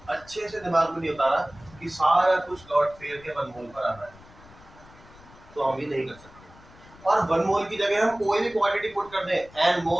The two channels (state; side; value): noise; left; rumble, 23 dB below the sound